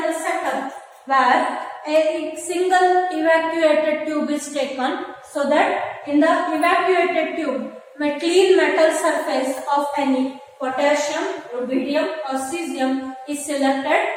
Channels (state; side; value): identical; both; correlation 1.00